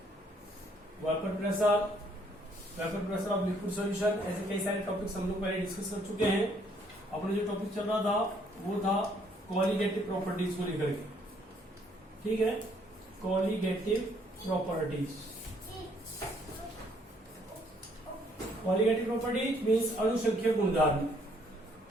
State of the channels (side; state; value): both; normal; correlation 0.66